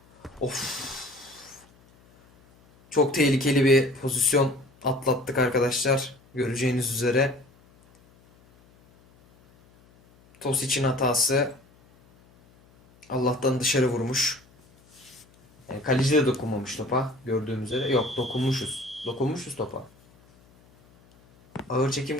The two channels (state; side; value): noise; left; hum, 29 dB below the sound